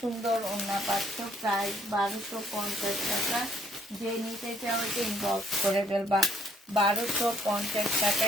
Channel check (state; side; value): normal; both; correlation 0.65